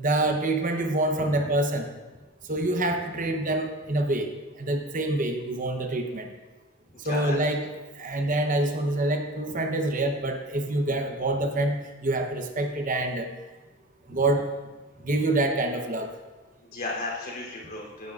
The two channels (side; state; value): both; normal; correlation 0.36